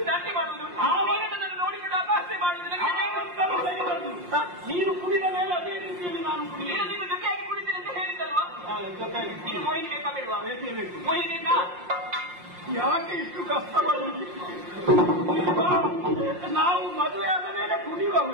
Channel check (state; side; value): late; left; 5.6 ms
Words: ದಂತೆ ಮಾಡುವುದು ಆವಾಗ ನನ್ನನ್ನು ನೋಡಿಕೊಂಡು ಅಪಹಾಸ್ಯ ಮಾಡುವುದು ನೀನು ಕುಡಿದ ಮೇಲೆ ಅದೇ ರೀತಿಯಲ್ಲಿ ನಾನು ಕುಡಿಯುವ ನೀನು ಜೊತೆಯಾಗಿ ಕುಡಿತೀನಿ ಅಂತ ಹೇಳಿದ್ದಲ್ವಾ ನೀನು ಮೋಹಿನಿ ಬೇಕಾ ಬೇಡವಾ ಮೋಹಿನಿ ಬೇಕಾ ಯಾಕೆ ಇಷ್ಟು ಕಷ್ಟಪಡುವುದು ನಾವು ಮದುವೆ ಆದ ಮೇಲೆ ಕುಡಿಯುವ